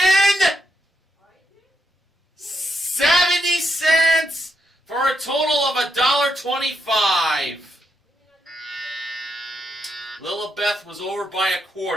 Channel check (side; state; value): both; normal; correlation 0.80